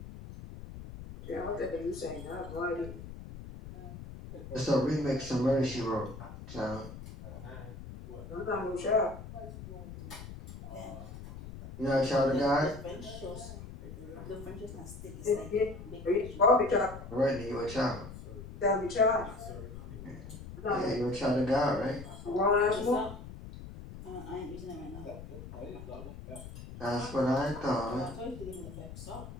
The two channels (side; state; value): left; noise; rumble, 12 dB below the sound